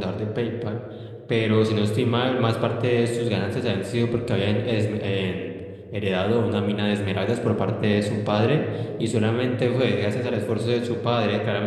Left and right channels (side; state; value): both; identical; correlation 1.00